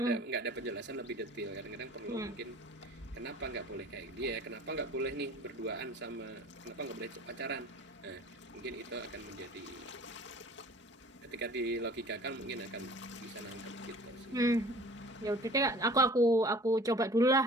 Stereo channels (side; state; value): both; normal; correlation 0.46